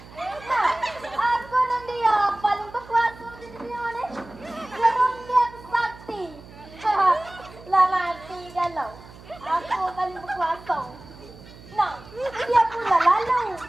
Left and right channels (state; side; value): noise; right; hum, 19 dB below the sound